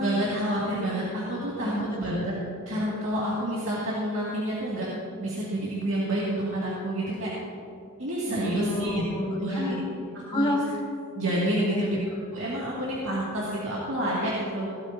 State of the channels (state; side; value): normal; both; correlation 0.47